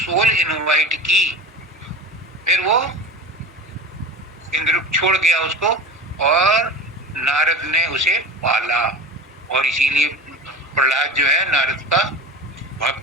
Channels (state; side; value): normal; both; correlation 0.32